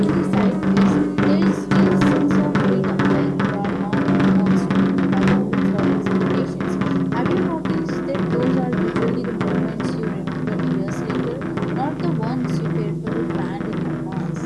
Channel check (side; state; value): both; identical; correlation 1.00